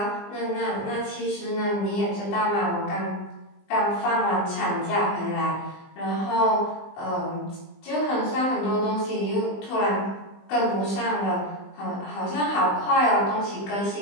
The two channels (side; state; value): right; late; 20 ms